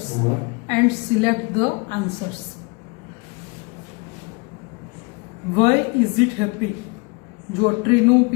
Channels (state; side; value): quieter; right; 29.7 dB